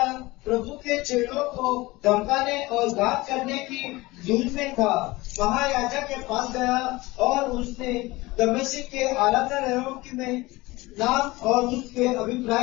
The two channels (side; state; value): right; quieter; 20.9 dB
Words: प्रभु के चेलों को धमकाने और घात करने की धुन में था, महायाजक के पास गया और उसने दमिश्क के आलादारों में नाम और उसके